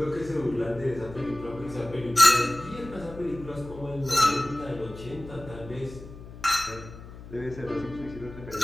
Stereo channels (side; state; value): left; noise; hum, 15 dB below the sound